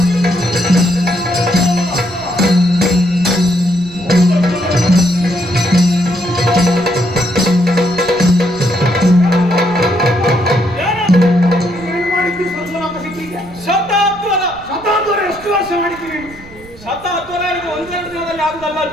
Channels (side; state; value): right; noise; rumble, 20 dB below the sound